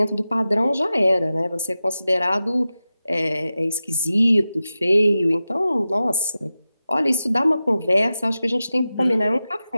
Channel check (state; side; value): inverted; both; correlation -0.93